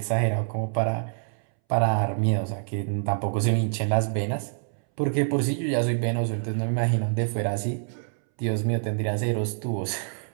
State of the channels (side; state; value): left; silent; 61 dB below the other